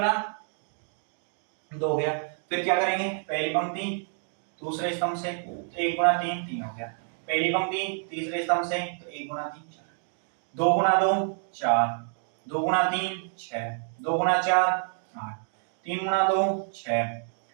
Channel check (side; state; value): left; silent; 56 dB below the other